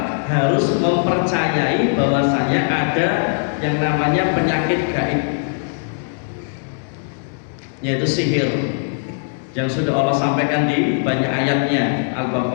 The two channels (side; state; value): right; silent; 66 dB below the other